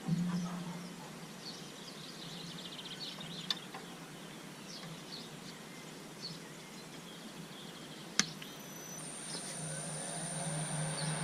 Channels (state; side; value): identical; both; correlation 1.00